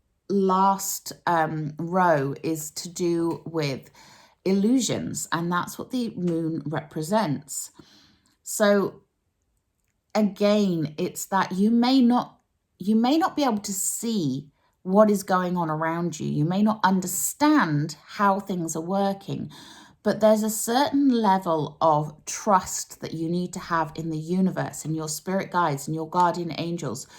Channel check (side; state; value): both; identical; correlation 1.00